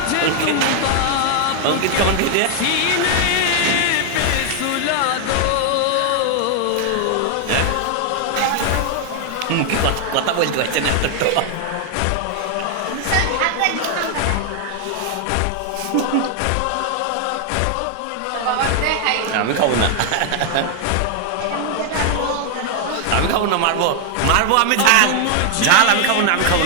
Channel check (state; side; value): different; both; correlation 0.00